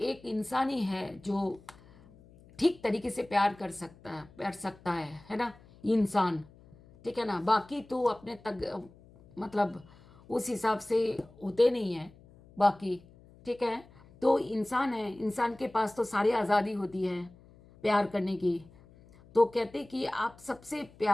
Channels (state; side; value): noise; left; hum, 25 dB below the sound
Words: एक इंसान ही है जो ठीक तरीके से प्यार सकता है ना, इंसान। ठीक है ना, बाकी तो अपने तक मतलब उस हिसाब से होते नहीं हैं बाकी। ठीक है, तो इंसान है, इंसान के पास तो सारी आज़ादी होती है प्यार करने की। तो कहते कि आप सबसे